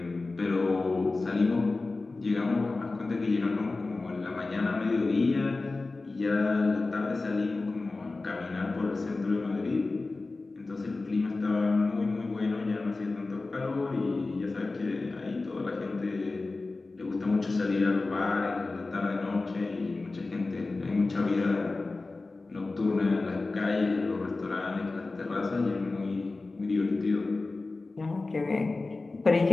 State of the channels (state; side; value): quieter; right; 3.5 dB